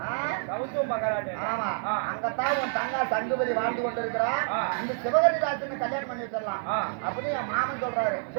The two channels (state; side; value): silent; left; 59 dB below the other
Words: ஆ? சவுத்து மகாராஜா. ஆமா. ஆ. அங்கத்தான் உன் தங்கா சங்குபதி வாழ்ந்து கொண்டிருக்கிறான். ஆ. இந்த சிவகரி ராஜனை கல்யாணம் பண்ணி வச்சிடலாம் ஆ. அப்படின்னு என் மாமன் சொல்றாரு.